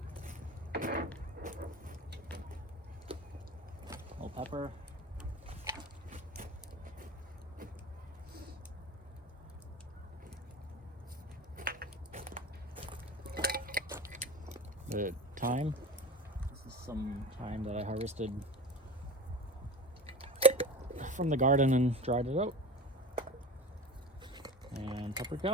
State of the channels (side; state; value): both; normal; correlation 0.31